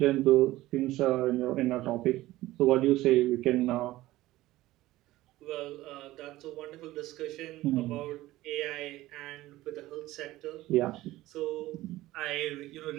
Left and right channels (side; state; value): left; quieter; 16.9 dB